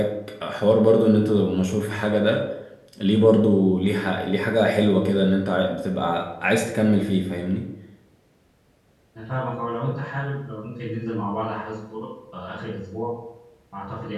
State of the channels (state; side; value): identical; both; correlation 1.00